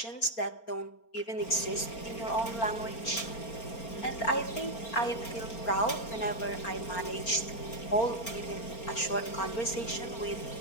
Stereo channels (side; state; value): right; late; 4.4 ms